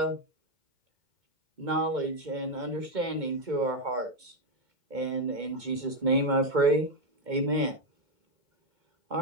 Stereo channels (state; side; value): late; left; 2.2 ms